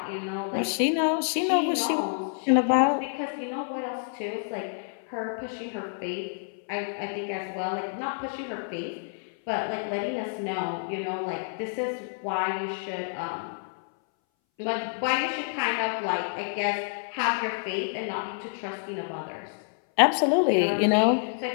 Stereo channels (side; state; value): right; silent; 59 dB below the other